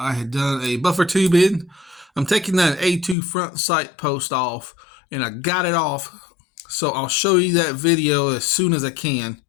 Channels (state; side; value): drops out; right; at 3.2 s